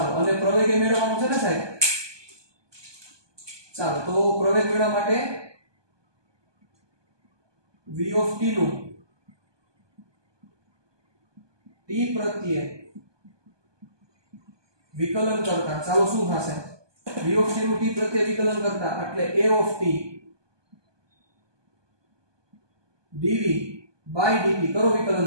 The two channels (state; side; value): late; left; 1.2 ms